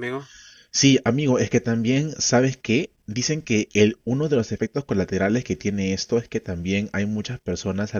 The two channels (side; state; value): both; identical; correlation 1.00